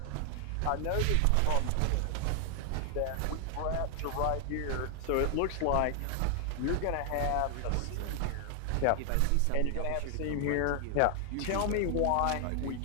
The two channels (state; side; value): different; both; correlation 0.00